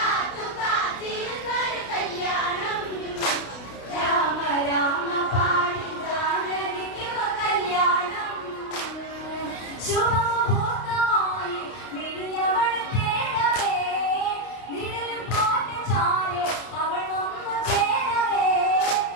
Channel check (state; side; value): late; right; 32 ms